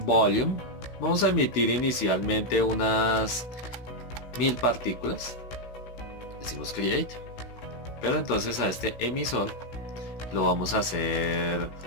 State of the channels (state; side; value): late; right; 16 ms